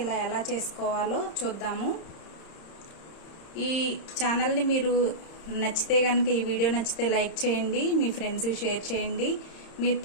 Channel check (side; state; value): right; late; 30 ms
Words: ఇలా ఎలా చేసుకోవాలో చూద్దాము. ఈ ఛానల్ని మీరు నచ్చితే కనుక, ఈ వీడియో నచ్చితే లైక్ చేయండి, మీ ఫ్రెండ్స్కి షేర్ చేయండి. మీరు